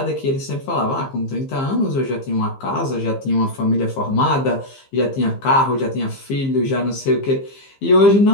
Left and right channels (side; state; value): right; late; 15 ms